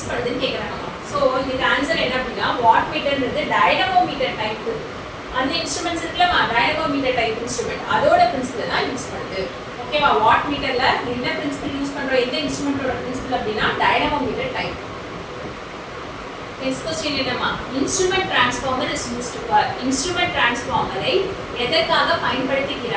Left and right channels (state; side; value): identical; both; correlation 1.00